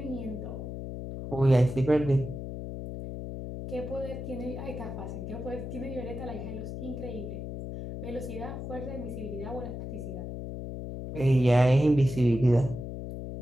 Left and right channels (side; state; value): left; noise; hum, 7 dB below the sound